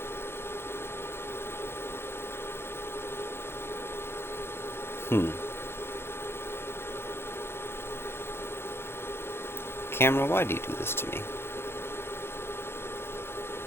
Camera, why do you do this to me?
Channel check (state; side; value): late; right; 0.12 ms